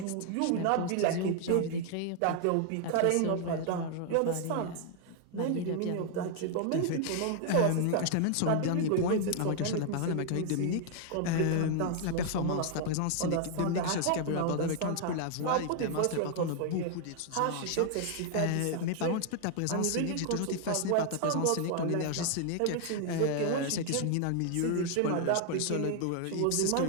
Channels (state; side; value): different; both; correlation 0.00